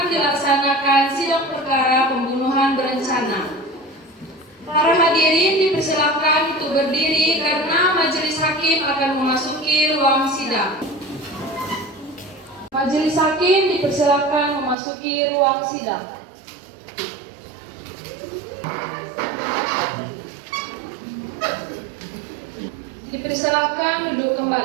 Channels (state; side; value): drops out; left; at 14.8 s